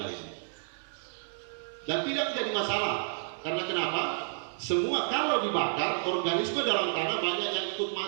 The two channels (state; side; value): silent; left; digital silence